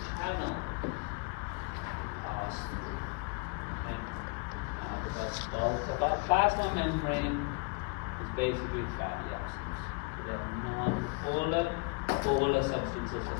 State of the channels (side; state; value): right; quieter; 31.7 dB